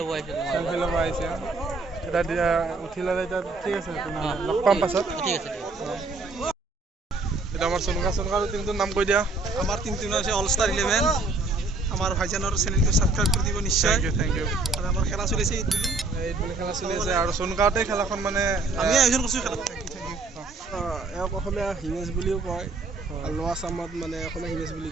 ল'ব আহিছে এতিয়া উঠি ল'লে এতিয়া ঠিক আছে লগ পাম পাছত ঠিক আছে এটা আমাৰ সোনকা টিমটোৰ নাম কৈ দিয়া আমাৰ টিমটোৰ নাম হৈছে অল ষ্টাৰ 11 আমাৰ ভাইজানৰ চেনেলটো ছাবস্ক্ৰাইব কৰি দিব নিশ্চয় থেংক ইউ আৰু আমাৰ খেলা চলিছে ঈদ বুলি খেলা চলি আছে আৰু সোনকাতে খেলাখন মানে আমি আয়োজন কৰিছোঁ খেলা এওক অসমীয়া হিমেশ বুলিও কয় লোৱা আছামত মানে অসমীয়া হিমেশ বুলি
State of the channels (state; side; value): quieter; left; 3.5 dB